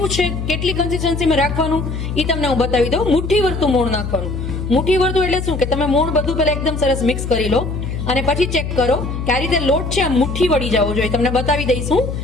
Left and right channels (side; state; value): left; noise; hum, 5 dB below the sound